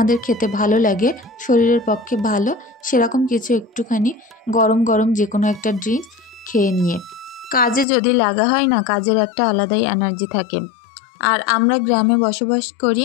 খেতে ভালো লাগে, শরীরের পক্ষে ভালো, সেরকম কিছু একটুখানি গরম গরম যে কোনো একটা ড্রিঙ্কস খেয়ে নিয়ে কাজে যদি লাগা হয় না, কাজের একটা আলাদাই এনার্জি থাকে। আর আমরা গ্রামে বসবাস করি,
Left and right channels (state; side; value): drops out; right; at 7.9 s